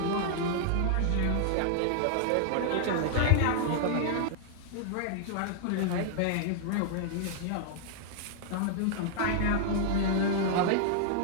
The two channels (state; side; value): different; both; correlation -0.01